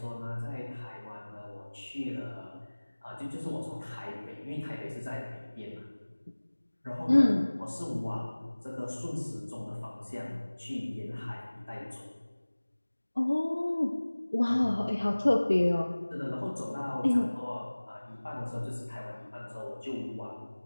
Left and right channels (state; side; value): inverted; both; correlation -1.00